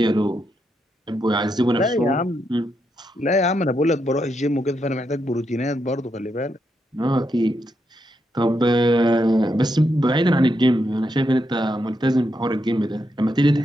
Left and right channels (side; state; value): both; normal; correlation 0.82